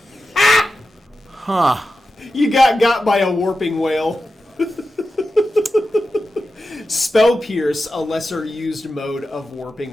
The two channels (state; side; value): normal; both; correlation 0.91